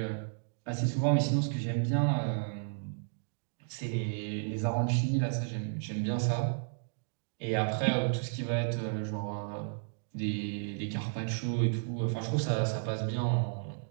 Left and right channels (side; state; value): left; silent; digital silence